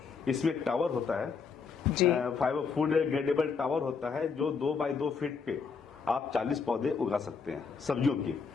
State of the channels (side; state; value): right; quieter; 5.5 dB